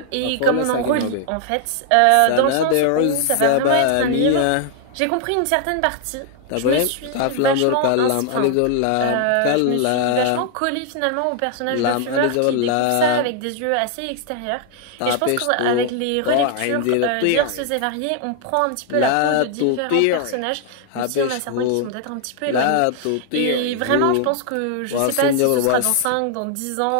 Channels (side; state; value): both; different; correlation 0.00